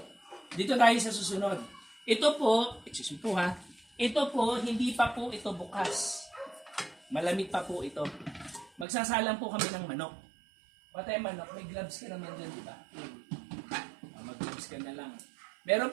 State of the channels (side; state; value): left; drops out; at 8.8 s